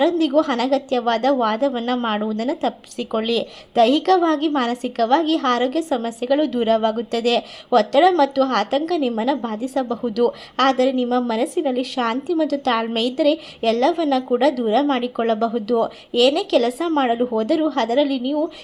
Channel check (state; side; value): identical; both; correlation 1.00